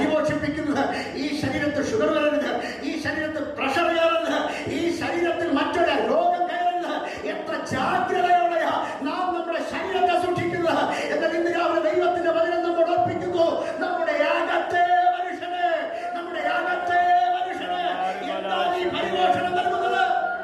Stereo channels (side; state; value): both; identical; correlation 1.00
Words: ഈ ശരീരത്തിൽ ഷുഗർ വരരുത്, ഈ ശരീരത്തിൽ പ്രഷർ കയറരുത്, ഈ ശരീരത്തിൽ മറ്റൊരു രോഗം കയറരുത്. എത്ര ജാഗ്രതയോടെയാ നാം നമ്മുടെ ശരീരത്തെ സൂക്ഷിക്കുന്നത്. എന്നാൽ ഇന്ന് രാവിലെ ദൈവത്തിന്റെ വചനം നമ്മൾ ഓർപ്പിക്കുന്നു, നമ്മുടെ അകത്തെ മനുഷ്യനെ എന്താണ് ഈ പരിപോഷണം നൽകുന്നത്?